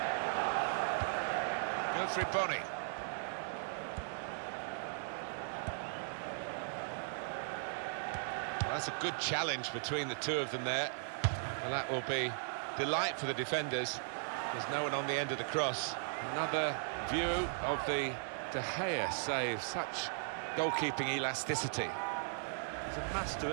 Triponi. Well, that's a good challenge between the two of them there, and that will be delight for the defenders. There's no one on the end of the cross. Another view of the De Gea save. Such goalkeeping elasticity. He's a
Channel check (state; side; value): silent; left; digital silence